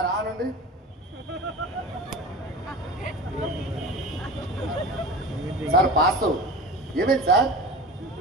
ఆనండి. Sir pass. ఏమైంది సార్?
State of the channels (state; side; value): normal; both; correlation 0.33